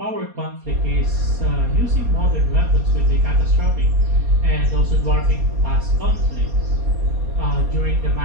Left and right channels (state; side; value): late; left; 4.2 ms